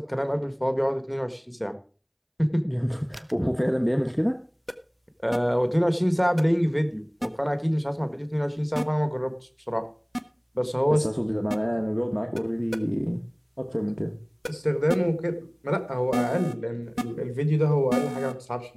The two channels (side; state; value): both; identical; correlation 1.00